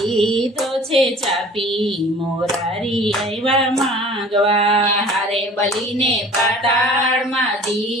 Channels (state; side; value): normal; both; correlation 0.47